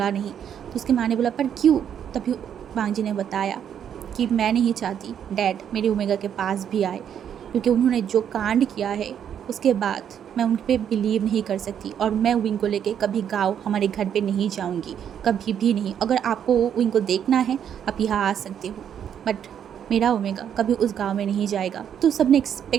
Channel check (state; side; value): quieter; left; 8.9 dB